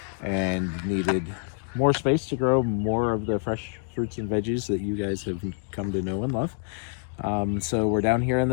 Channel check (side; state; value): right; silent; digital silence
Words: and needed more space to grow more of the fresh fruits and veggies that you guys have come to know and love. So we're down here in